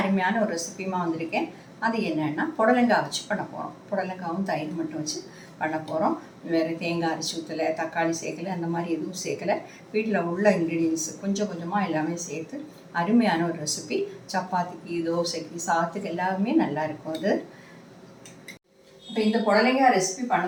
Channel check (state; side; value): identical; both; correlation 1.00